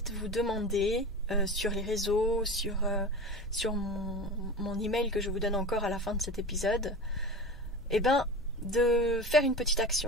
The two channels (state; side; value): noise; right; hum, 21 dB below the sound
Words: vous demander sur les réseaux, sur mon email que je vous donne encore à la fin de cet épisode, de faire une petite